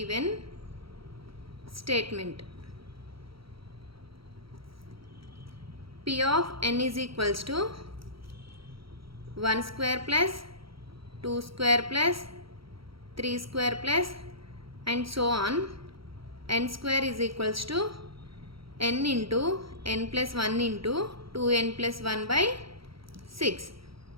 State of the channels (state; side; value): late; left; 0.75 ms